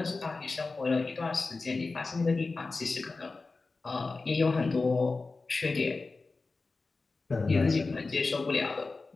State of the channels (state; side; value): quieter; right; 3.8 dB